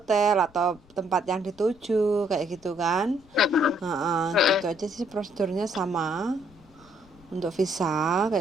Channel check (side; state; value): left; noise; rumble, 27 dB below the sound